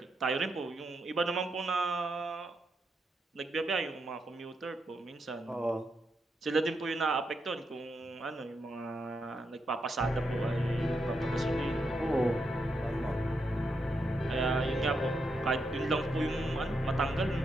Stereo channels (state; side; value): normal; both; correlation 0.82